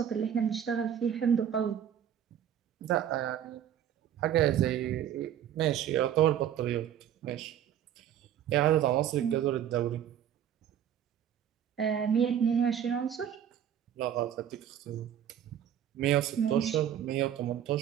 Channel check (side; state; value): left; quieter; 9.9 dB